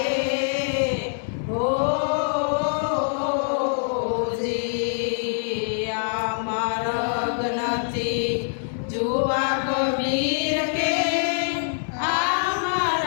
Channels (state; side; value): silent; right; digital silence